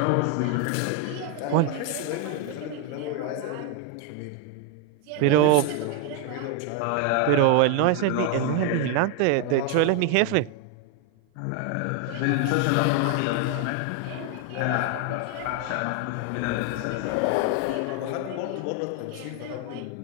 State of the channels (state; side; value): different; both; correlation 0.01